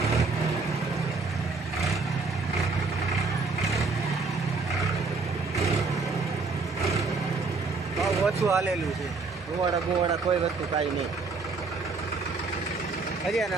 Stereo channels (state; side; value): quieter; left; 4.1 dB